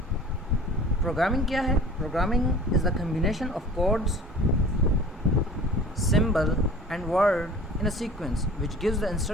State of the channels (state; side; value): normal; both; correlation 0.45